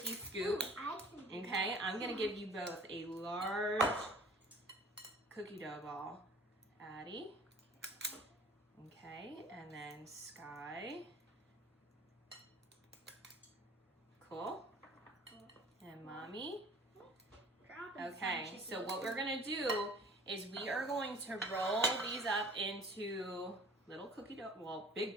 scoop. I can do Okay, I'm gonna give you both a large cookie dough ball. Addie. Okay, and then Sky. Cool. And mommy. Dropping Okay, some so chicken. what we're gonna do is we are going to roll these up into little cookie dough, well,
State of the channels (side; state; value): both; normal; correlation 0.48